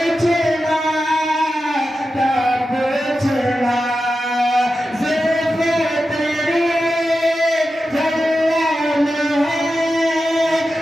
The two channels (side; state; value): both; normal; correlation 0.91